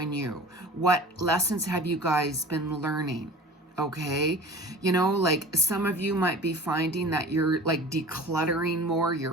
you? What lessons have you guys been learning? Okay, you know, like some of you might be finding that you're like decluttering more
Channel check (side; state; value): both; normal; correlation 0.40